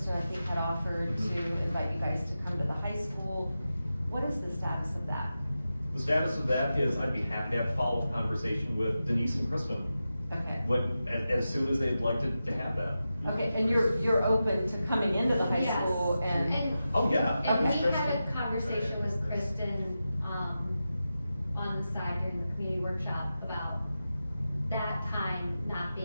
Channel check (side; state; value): both; inverted; correlation -0.92